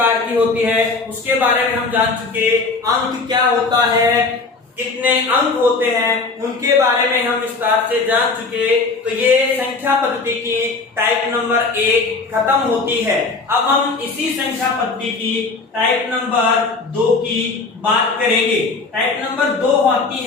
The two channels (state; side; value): quieter; right; 4.0 dB